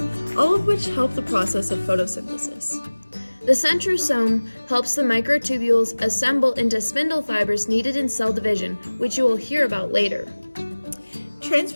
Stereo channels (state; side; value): inverted; both; correlation -1.00